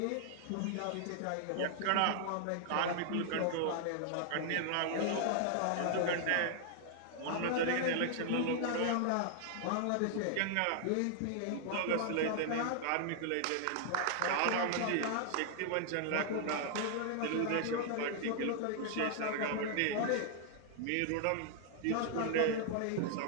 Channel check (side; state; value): both; different; correlation -0.01